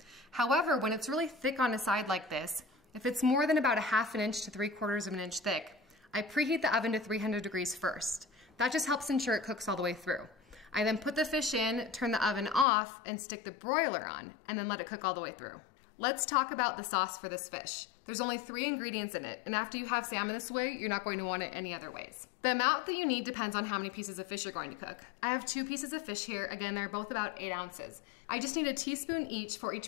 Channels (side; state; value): right; drops out; at 12.7 s